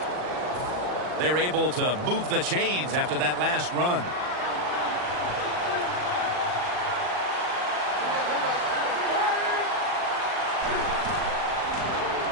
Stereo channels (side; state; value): left; late; 39 ms